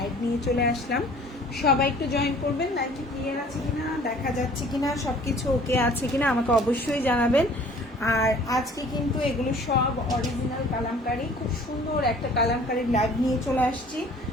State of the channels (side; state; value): both; normal; correlation 0.51